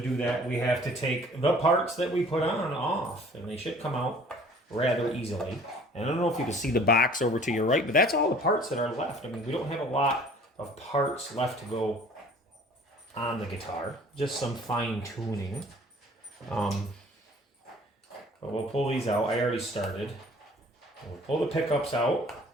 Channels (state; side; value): normal; both; correlation 0.51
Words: that, we have to take the parts that we put on off, and they should come out rather easily. And I don't know if you can see the box over to your right, but that's all the parts that are left. I mean, we don't have a lot of parts left to go on the guitar, just some fine tuning. But we'll pull these out. I already started. We'll pull the pickups out,